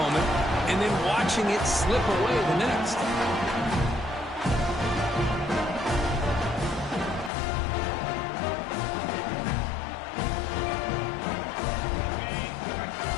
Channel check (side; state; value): right; drops out; at 7.3 s